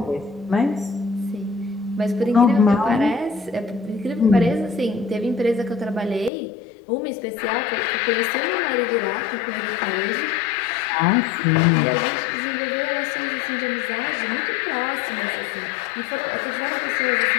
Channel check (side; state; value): right; drops out; at 6.3 s